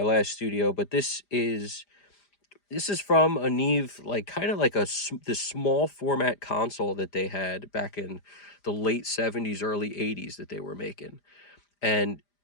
last studio, but this is from a Neve, like kind of like this small format console that they had back in the late 70s, early 80s that they were making. And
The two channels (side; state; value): right; late; 5.0 ms